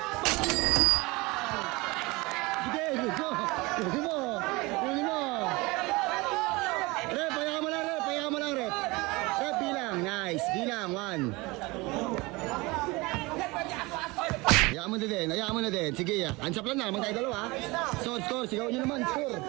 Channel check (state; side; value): quieter; left; 23.6 dB